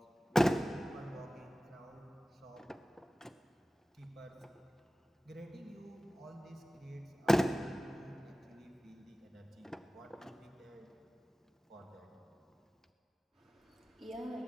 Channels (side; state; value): both; normal; correlation 0.97